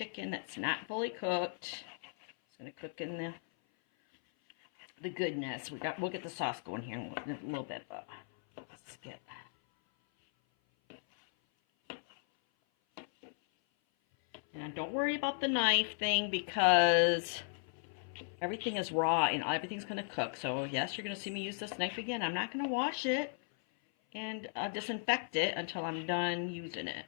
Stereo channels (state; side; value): silent; right; 53 dB below the other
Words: that's not fully cooked. It's going to cook in the goodness. We'll get the sauce going here in a little bit, but let's get. And don't worry about the knife thing because everything is raw and everything's going to cook. So yes, you're going to see me use this knife again. I'm not going to wash it and disinfect it until I'm done using